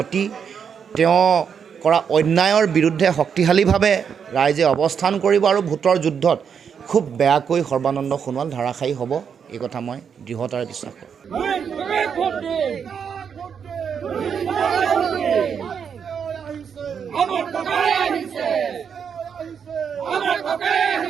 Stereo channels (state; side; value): quieter; left; 7.1 dB